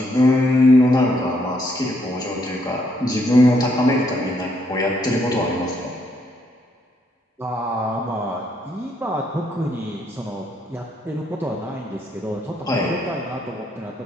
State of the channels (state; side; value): normal; both; correlation 0.72